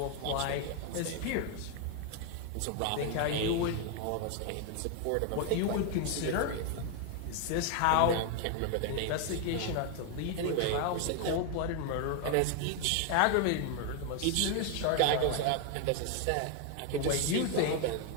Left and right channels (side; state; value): both; different; correlation 0.01